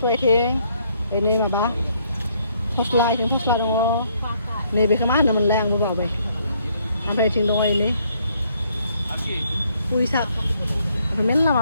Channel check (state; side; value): inverted; both; correlation -0.69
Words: आइथिं बेनि माबा फस्ला आइथिं फस्ला दङ नैबेखौ मा होनोमोनलाय आंबो बावबाय ओमफ्राय बेथिं दङ एनै पुइ साग मेरला माबा